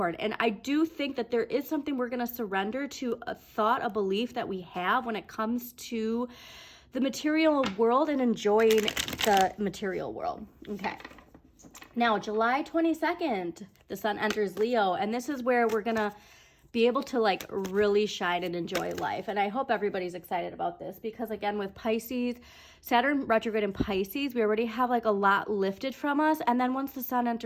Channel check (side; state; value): both; identical; correlation 1.00